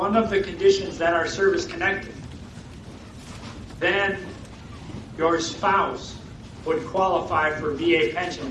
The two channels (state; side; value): identical; both; correlation 1.00